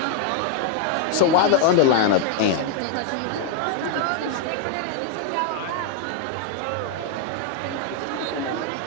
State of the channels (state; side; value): different; both; correlation 0.00